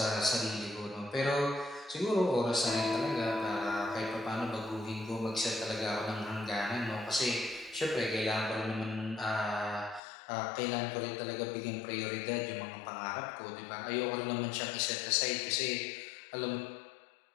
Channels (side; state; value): right; drops out; at 10.0 s